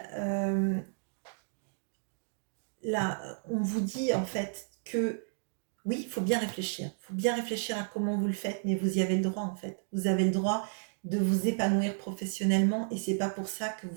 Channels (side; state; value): left; silent; digital silence